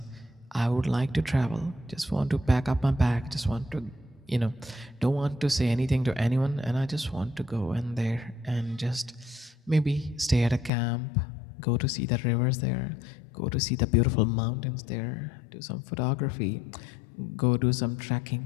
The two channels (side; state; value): right; drops out; at 10.7 s